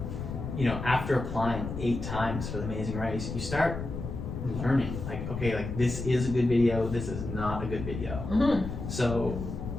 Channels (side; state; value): left; noise; rumble, 6 dB below the sound